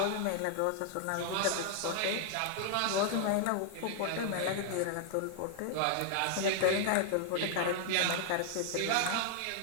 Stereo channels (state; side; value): different; both; correlation 0.00